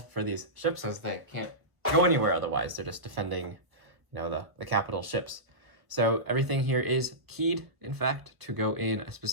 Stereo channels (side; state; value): left; late; 1.3 ms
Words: for these ships since they can't go anywhere otherwise. They're just defending, the capital ships. So everything here is keyed, in fact, to go in a